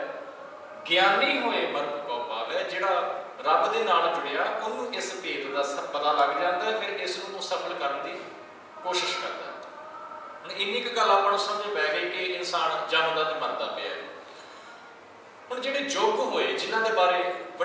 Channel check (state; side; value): identical; both; correlation 1.00